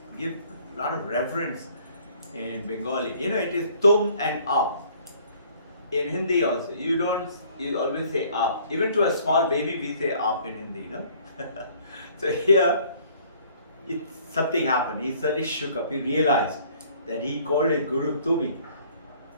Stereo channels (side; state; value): both; inverted; correlation -0.57